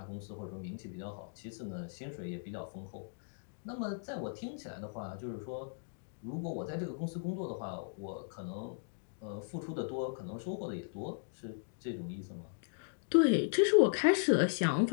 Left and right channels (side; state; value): right; silent; digital silence